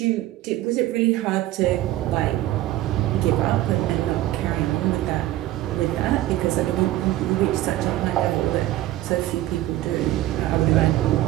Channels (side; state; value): left; quieter; 15.1 dB